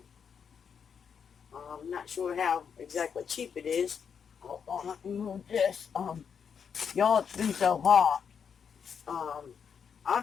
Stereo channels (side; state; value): right; quieter; 7.0 dB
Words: I'm not sure how exactly cheap it is. Hold on, let me move this. Y'all, it's been so hot.